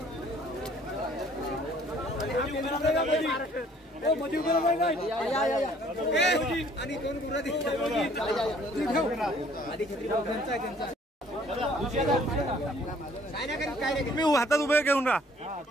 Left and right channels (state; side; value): normal; both; correlation 0.58